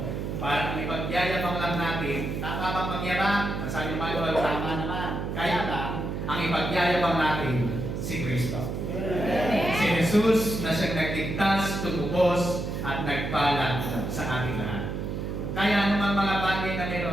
Para ipagyayabang lang natin, tama bang magyabang? Masabi naman yung tama naman. Kaya lang, ang ipagyayabang natin, si Kristo. Si Jesus na siyang nagligtas, tumubos, at nagpala sa ating lahat. Kaya naman mga bagay na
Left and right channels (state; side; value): noise; right; hum, 4 dB below the sound